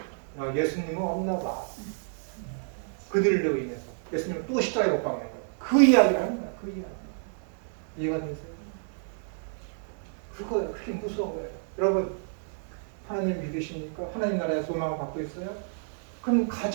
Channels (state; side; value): silent; left; digital silence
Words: 예수님은 없나 봐. 그들로 인해서. 예수님은 또 십자가에 못 박는 거야. 그 이야기를 하는 거야. 그 이야기. 이해가 되세요? 그거예요. 그게 무서운 거예요. 여러분, 하나님 믿으십니까? 하나님 나라의 소망을 갖고 있어요? 그럼